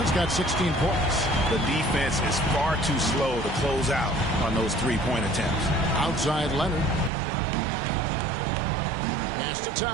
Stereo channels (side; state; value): left; drops out; at 7.1 s